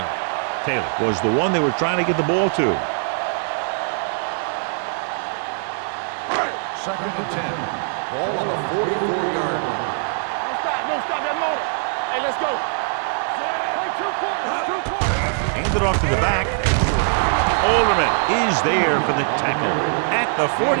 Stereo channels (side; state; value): left; silent; digital silence